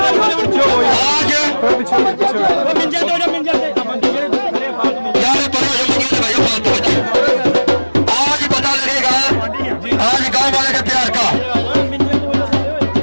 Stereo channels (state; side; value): inverted; both; correlation -1.00